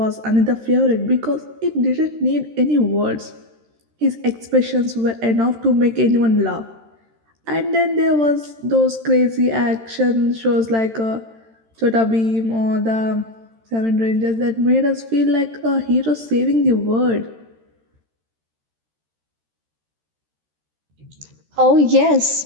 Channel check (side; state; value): left; late; 13 ms